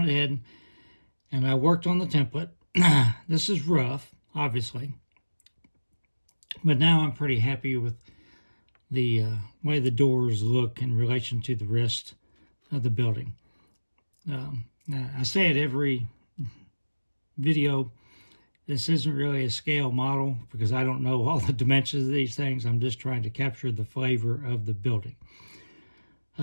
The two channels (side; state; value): both; inverted; correlation -1.00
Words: ahead and I worked on the template. This is rough, obviously, but now I'm pretty happy with the way the doors look in relation to the rest of the building. I say it every video, this isn't really a scale model because I don't know all the dimensions of these things. I'm just trying to capture the flavor of the building.